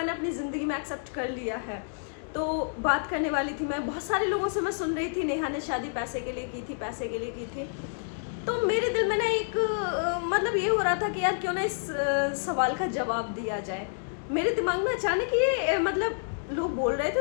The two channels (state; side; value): silent; right; digital silence